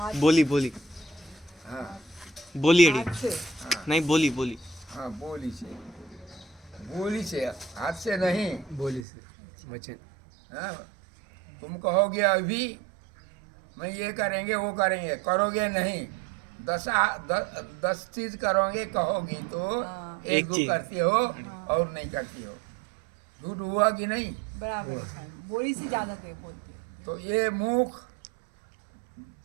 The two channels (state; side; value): drops out; left; at 9.1 s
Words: बोली हाँ बोली अड़ी, हाथ से। नहीं बोली हाँ, बोली से, हाथ से नहीं। बोली से वचन। हाँ, तुम कहोगे अभी मैं ये करेंगे वो करेंगे, करोगे नहीं। 10 चीज करोगे कहोगी तो हाँ। एक एक दो चीज। करती हो और नहीं करती हो। झूठ हुआ कि नहीं? बराबर है। बोली से ज्यादा दे बोलते हैं। तो ये मुंह